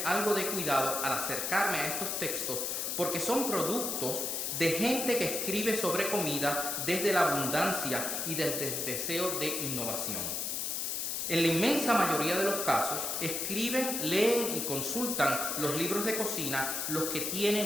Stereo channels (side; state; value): left; noise; hiss, 1 dB below the sound